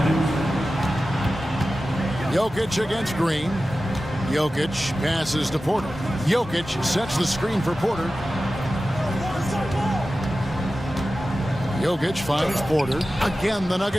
Jokic against Green. Jokic passes to Porter. Jokic sets the screen for Porter. Jokic finds Porter. Again, the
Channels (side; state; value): both; normal; correlation 0.94